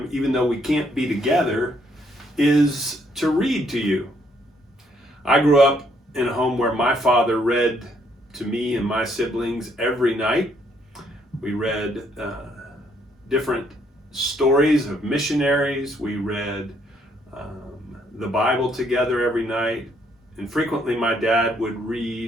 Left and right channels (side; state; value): both; normal; correlation 0.70